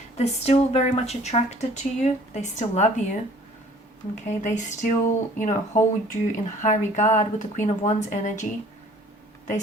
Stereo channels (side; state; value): both; normal; correlation 0.53